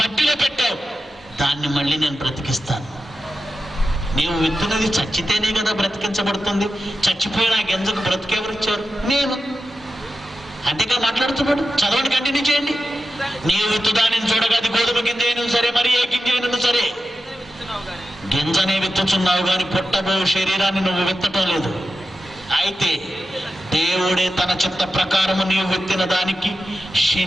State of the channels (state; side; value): normal; both; correlation 0.91